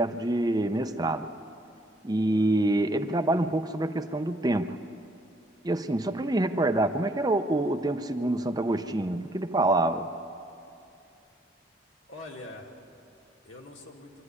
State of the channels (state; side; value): normal; both; correlation 0.67